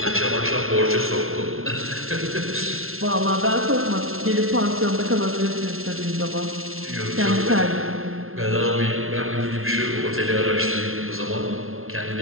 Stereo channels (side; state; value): left; late; 0.62 ms